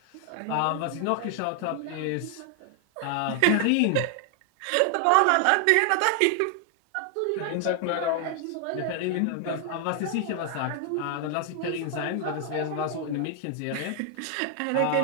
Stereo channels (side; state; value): both; different; correlation 0.00